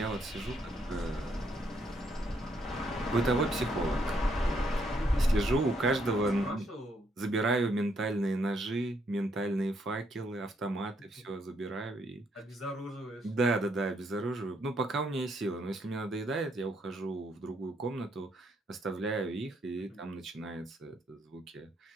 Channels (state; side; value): normal; both; correlation 0.73